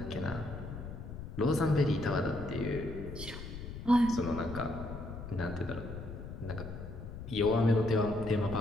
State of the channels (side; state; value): left; noise; rumble, 9 dB below the sound